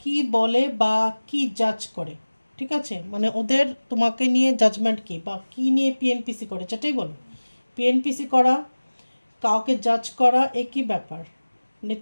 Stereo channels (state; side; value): inverted; both; correlation -1.00